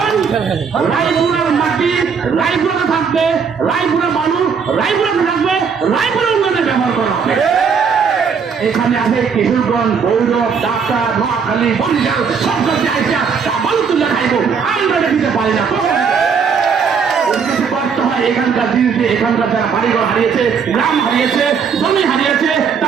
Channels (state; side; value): quieter; left; 6.2 dB